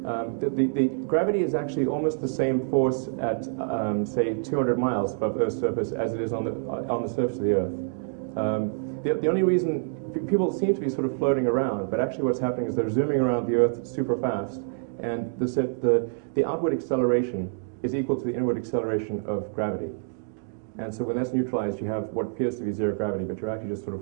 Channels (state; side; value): silent; left; digital silence